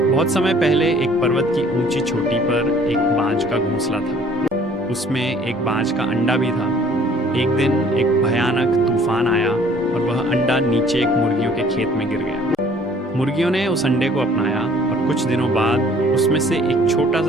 बहुत समय पहले एक पर्वत की ऊंची चोटी पर एक बाज का घोंसला था। उसमें एक बाज का अंडा भी था। एक दिन एक भयानक तूफान आया और वह अंडा नीचे एक मुर्गियों के खेत में गिर गया। मुर्गियों ने उस अंडे को अपनाया और कुछ दिनों बाद उसमें से एक छोटा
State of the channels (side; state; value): both; normal; correlation 0.56